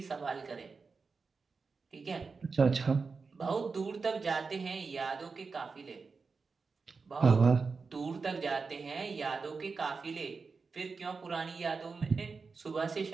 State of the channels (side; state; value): left; quieter; 4.7 dB